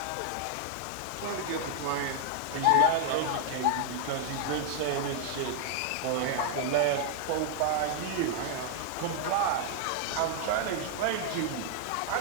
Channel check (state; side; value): different; both; correlation 0.00